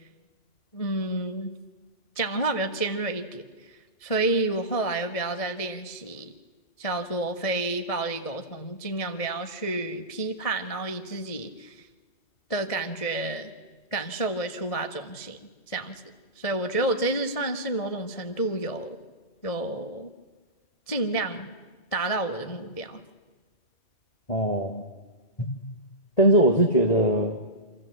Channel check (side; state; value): right; late; 1.7 ms